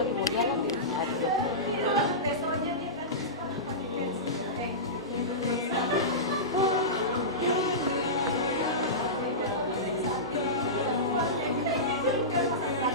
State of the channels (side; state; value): both; normal; correlation -0.17